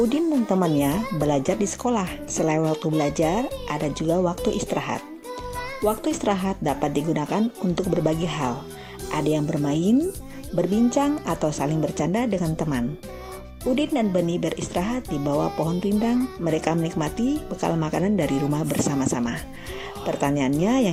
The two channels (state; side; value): identical; both; correlation 1.00